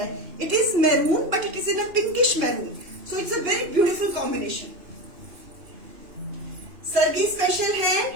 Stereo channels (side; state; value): left; late; 3.0 ms